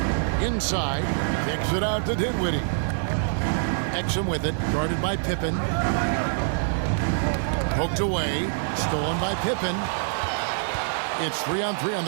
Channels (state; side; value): silent; left; 62 dB below the other